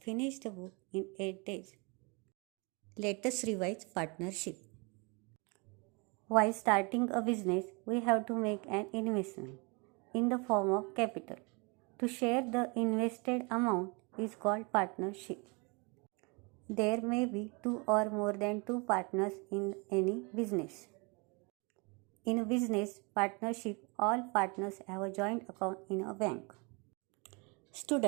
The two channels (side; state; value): left; quieter; 30.4 dB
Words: the book in 8 days. Let us revise partnership. While starting a business, we have to make an investment in the form of capital. To share the invested amount is called partnership. There may be 2 or more than 2 partners in any business. In a business partnership, all partners have a joint account in a bank.